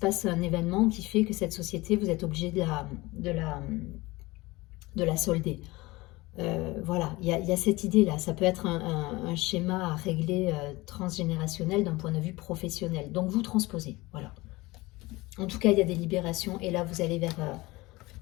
un événement qui fait que cette société, vous êtes obligé de la solder. Voilà, il y a cette idée-là. Ça peut être un schéma à régler transgénérationnel d'un point de vue professionnel. Donc vous transposez, voilà. En tout cas, il y a des libérations et là, vous allez vers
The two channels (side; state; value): right; quieter; 21.2 dB